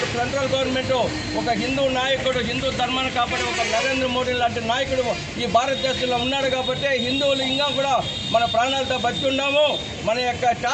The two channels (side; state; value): both; identical; correlation 1.00